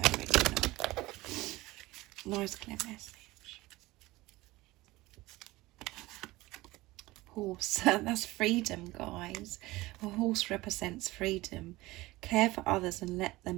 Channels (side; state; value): left; quieter; 19.4 dB